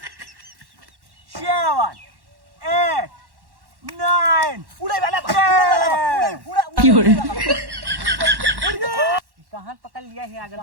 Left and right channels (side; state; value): left; late; 1.1 ms